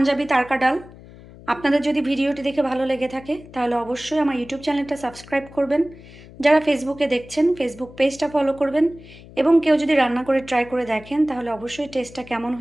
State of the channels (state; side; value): noise; left; hum, 19 dB below the sound